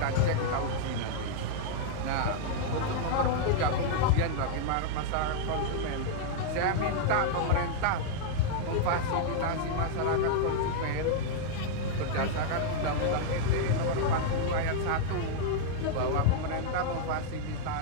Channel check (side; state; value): both; different; correlation -0.01